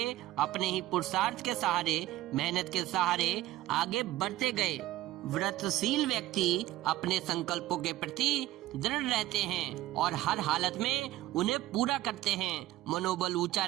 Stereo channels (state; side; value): quieter; left; 15.6 dB